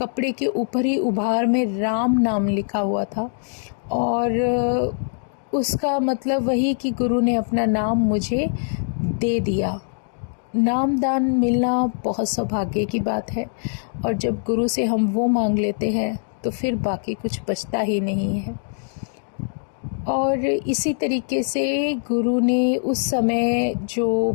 के ऊपर ही उभार में राम नाम लिखा हुआ था। और उसका मतलब वही कि गुरु ने अपना नाम मुझे दे दिया। नामदान मिलना बहुत सौभाग्य की बात है, और जब गुरु से हम वो मांग लेते हैं तो फिर बाकी कुछ बचता ही नहीं है। और इसी तरीके से गुरु ने उस समय जो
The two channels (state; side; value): silent; right; digital silence